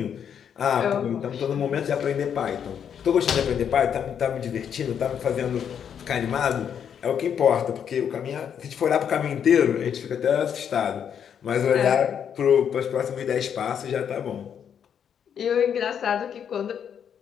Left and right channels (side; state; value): right; quieter; 8.2 dB